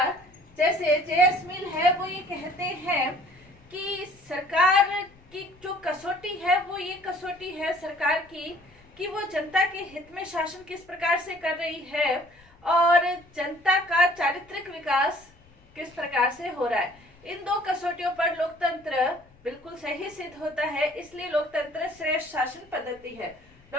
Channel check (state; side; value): noise; left; rumble, 28 dB below the sound